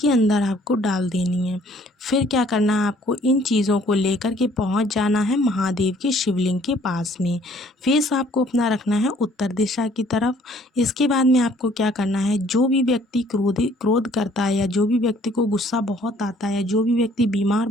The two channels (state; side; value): normal; both; correlation 0.59